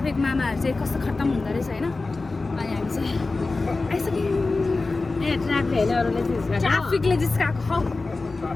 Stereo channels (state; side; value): quieter; right; 3.6 dB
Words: मामाहरू चाहिँ कस्तो खत्तम हुँदो रहेछ होइन अनि हामी चाहिँ आइसक्यौँ ट्राफिकले जिस्काएको हौ